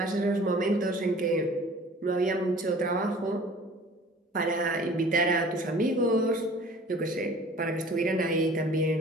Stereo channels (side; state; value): both; normal; correlation 0.47